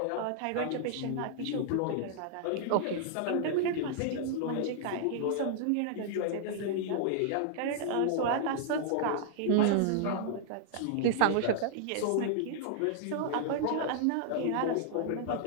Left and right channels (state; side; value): different; both; correlation -0.01